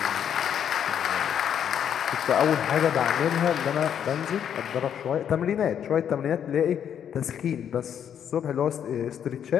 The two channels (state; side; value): quieter; right; 8.9 dB